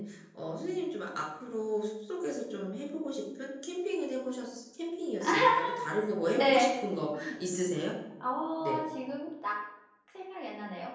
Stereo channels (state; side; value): identical; both; correlation 1.00